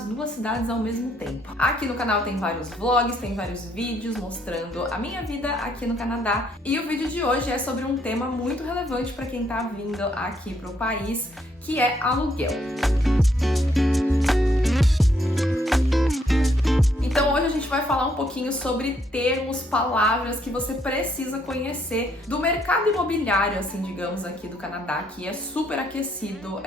duas cidades ao mesmo tempo. Aqui no canal tem vários vlogs, tem vários vídeos mostrando a minha vida aqui no Canadá. E o vídeo de hoje é sobre um tema muito relevante para quem tá vindo aqui pro país, que é aluguel. Então hoje a gente vai falar um pouquinho sobre termos, palavras que você precisa conhecer do mercado imobiliário, assim, digamos, aqui do Canadá, que é super aquecido,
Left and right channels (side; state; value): both; normal; correlation 0.71